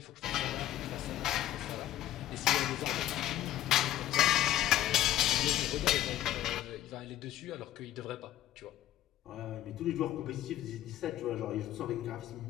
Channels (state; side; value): quieter; right; 13.3 dB